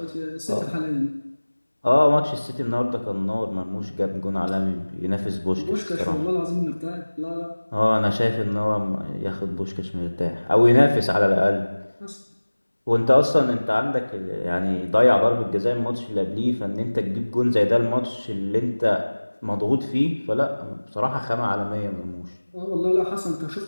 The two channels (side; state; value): both; inverted; correlation -1.00